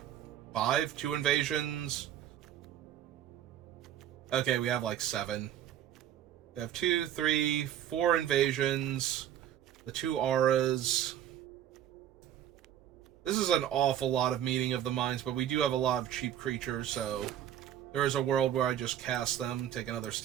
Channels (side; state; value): left; quieter; 10.9 dB